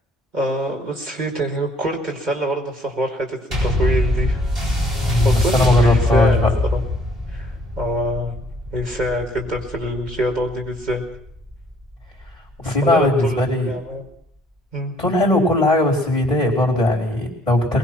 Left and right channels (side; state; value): both; normal; correlation 0.62